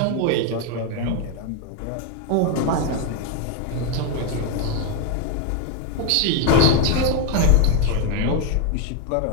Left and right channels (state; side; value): different; both; correlation 0.01